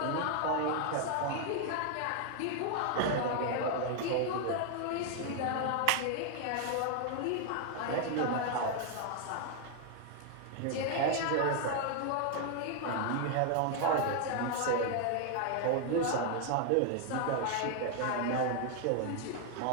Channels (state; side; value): different; both; correlation 0.00